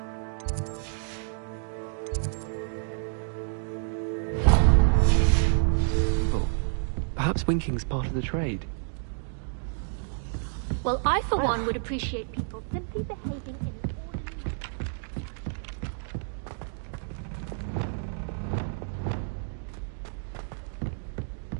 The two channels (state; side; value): silent; left; digital silence